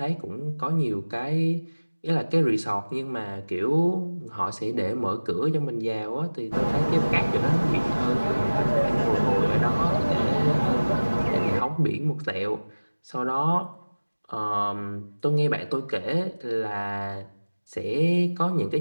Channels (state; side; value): inverted; both; correlation -1.00